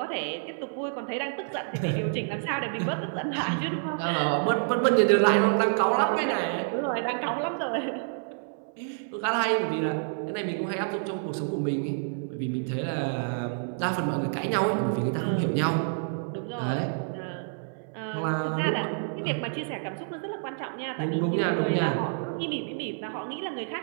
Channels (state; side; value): silent; left; 59 dB below the other